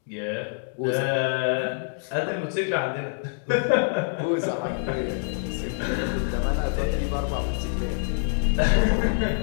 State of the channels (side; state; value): right; silent; digital silence